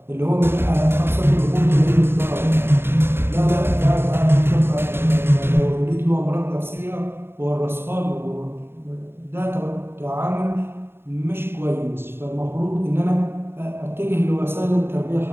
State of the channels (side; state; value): left; late; 0.11 ms